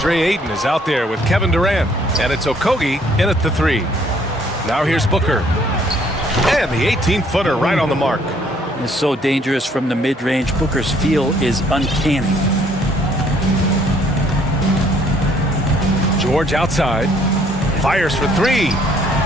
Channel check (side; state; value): both; normal; correlation 0.63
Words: Ayton is out there with Kevin Durant, and it's Okogie in at the 3. Now here's Booker. And the 18-footer right on the mark. It's so dangerous from the mid-range. Booker's feel is uncanny. George outside. Fires for 3.